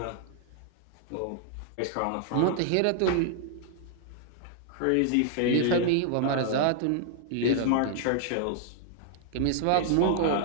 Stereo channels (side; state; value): both; different; correlation -0.01